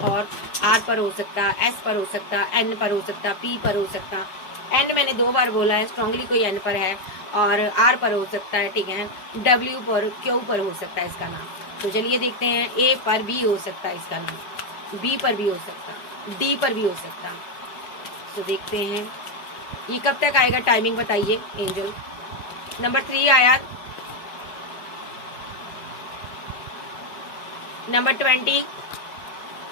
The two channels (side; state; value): right; late; 5.0 ms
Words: और आर पर हो सकता, एस पर हो सकता, एन पर हो सकता, पी पर हो सकता। एन मैंने 2 बार बोला है, स्ट्रांगली कोई एन पर है, और आर पर हो सकता है, ठीक है, डब्ल्यू पर, क्यू पर हो सकता है इसका नाम। तो चलिए देखते हैं, ए पर भी हो सकता है इसका नाम, बी पर भी हो सकता, डी पर भी हो सकता। तो देखते हैं ये कब तक आएगा, टाइमिंग बताइए एंजल। नंबर 3 आया, नंबर 20,